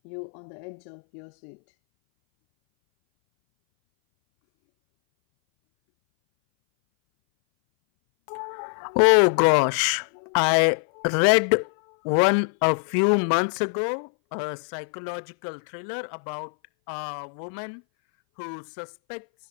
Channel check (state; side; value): silent; right; 60 dB below the other